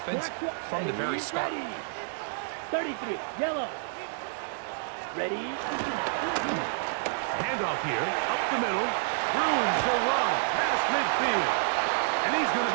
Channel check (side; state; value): left; silent; digital silence